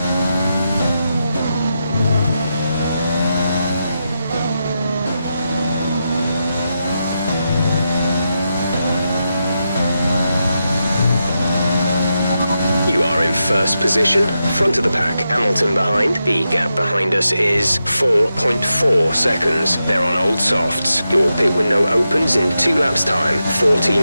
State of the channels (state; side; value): inverted; both; correlation -0.87